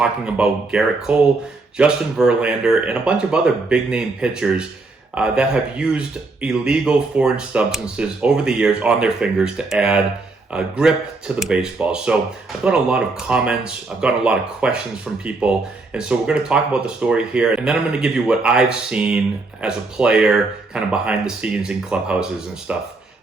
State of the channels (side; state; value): left; quieter; 3.5 dB